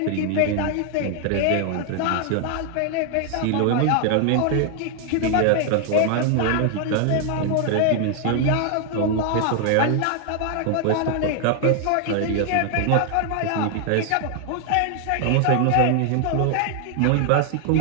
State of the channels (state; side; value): different; both; correlation 0.00